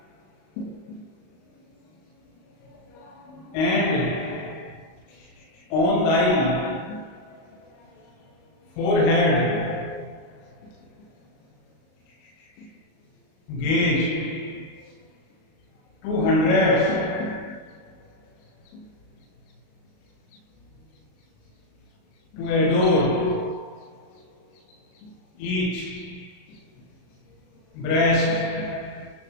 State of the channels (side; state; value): right; late; 38 ms